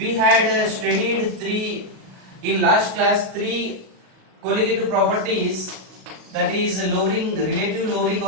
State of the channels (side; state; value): left; late; 37 ms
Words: had studied in last class three colligative properties, that is relative lowering